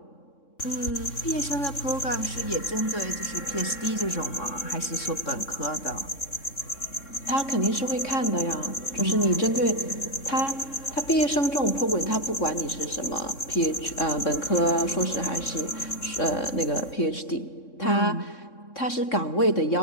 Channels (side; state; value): right; late; 3.6 ms